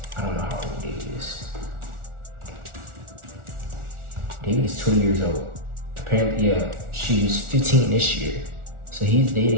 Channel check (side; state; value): left; late; 1.4 ms